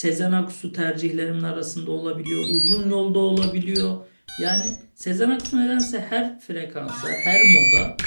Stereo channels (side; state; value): both; inverted; correlation -1.00